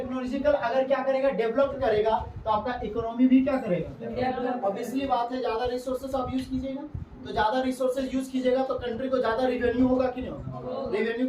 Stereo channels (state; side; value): identical; both; correlation 1.00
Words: अगर क्या करेगा? डेवलप करेगा तो आपका इकोनॉमी भी क्या करेगा? ऑब्वियसली बात है, ज्यादा रिसोर्सेज आप यूज कीजिएगा तो ज्यादा रिसोर्सेज यूज कीजिएगा तो कंट्री को ज्यादा रेवेन्यू होगा कि नहीं होगा? रेवेन्यू